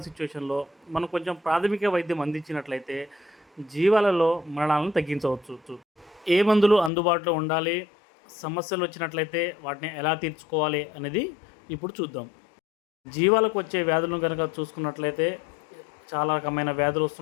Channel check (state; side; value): drops out; right; at 6.9 s